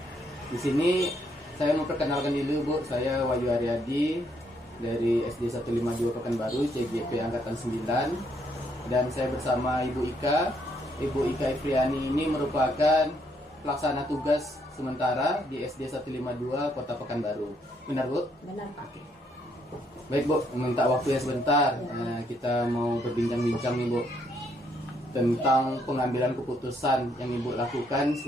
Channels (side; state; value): both; normal; correlation 0.72